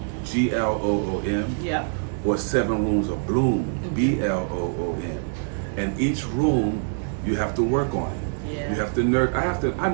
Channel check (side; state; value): left; silent; digital silence